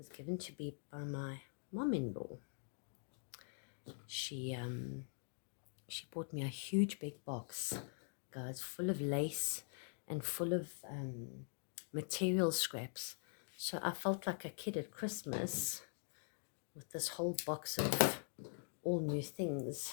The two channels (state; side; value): silent; right; digital silence